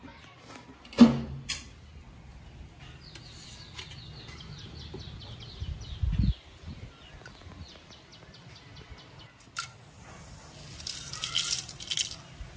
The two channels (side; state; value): both; identical; correlation 1.00